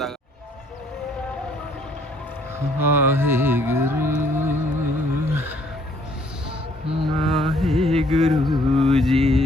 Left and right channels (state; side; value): normal; both; correlation 0.63